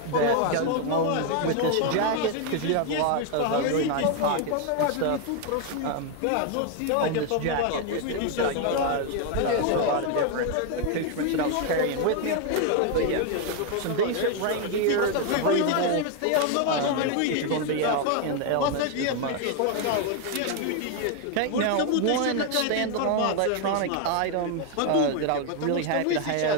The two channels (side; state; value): both; different; correlation 0.00